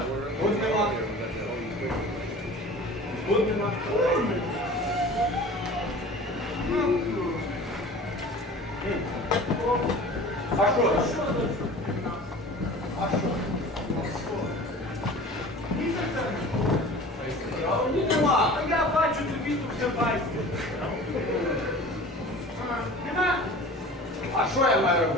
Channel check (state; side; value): normal; both; correlation 0.40